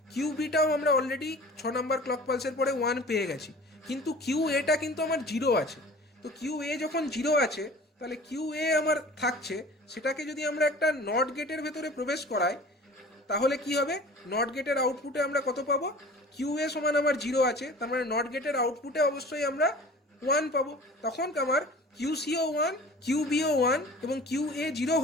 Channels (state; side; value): normal; both; correlation 0.43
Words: কিউবিটাও আমরা অলরেডি 6 নাম্বার ক্লক পালসের পরে 1 পেয়ে গেছি, কিন্তু কিউ এটা কিন্তু আমার 0 আছে। তো কিউ এ যখন 0 আছে, তাহলে কিউ এ আমার থাকছে, সেটাকে যদি আমরা একটা নট গেটের ভেতরে প্রবেশ করাই, তাহলে কি হবে, নট গেটের আউটপুটে আমরা কত পাবো, কিউ এ সমান আমার 0 আছে, তার মানে নট গেটের আউটপুটে অবশ্যই আমরা 1 পাবো। তখন আমার কিউসিও 1, কিউবিও 1 এবং কিউ এ 0